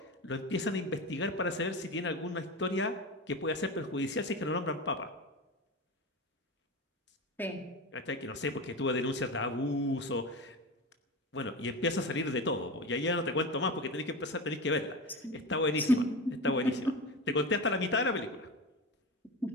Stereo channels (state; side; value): normal; both; correlation 0.25